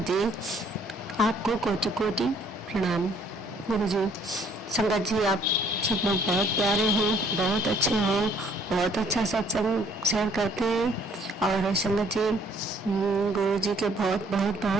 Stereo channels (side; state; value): both; normal; correlation 0.61